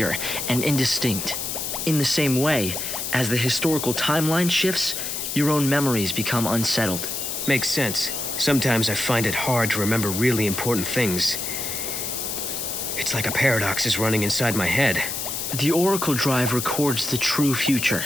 and indistinct. In the same way, as the historical timeline shifts, your own memories become unsettled. Makes sense. Sometimes I find it hard to remember really important things. It's like a paradox is running inside my head. The Oracle Drive records the true future,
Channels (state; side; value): noise; left; hiss, 4 dB below the sound